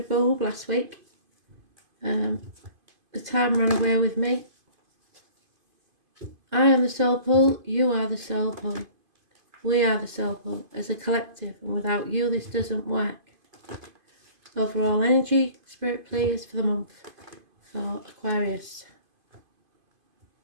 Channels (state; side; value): late; left; 2.5 ms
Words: bulb last week. The time ran away with me. I am the soul pull, you are the soul pull. We are the soul pull as a collective, and without you this doesn't work. Overall energy, spirit please for the month for Aquarius.